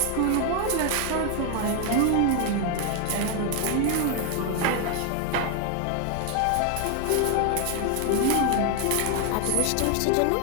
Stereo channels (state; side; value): different; both; correlation 0.01